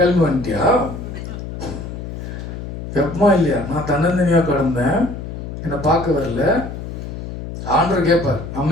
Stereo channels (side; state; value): left; noise; hum, 8 dB below the sound